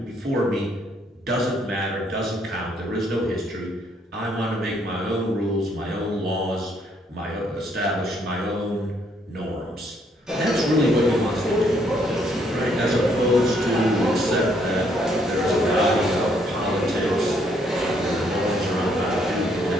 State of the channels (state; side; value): normal; both; correlation 0.69